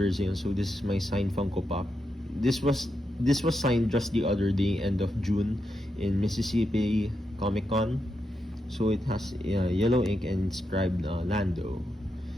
So this is my signed Funko Pop. This was signed just the other day, end of June, in Mississippi Comic Con. So it has yellow ink and inscribed Lando.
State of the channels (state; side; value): normal; both; correlation 0.85